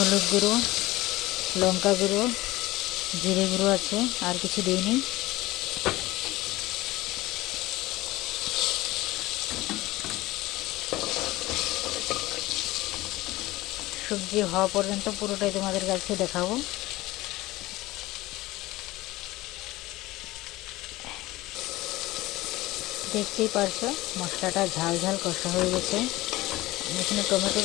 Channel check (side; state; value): right; quieter; 18.6 dB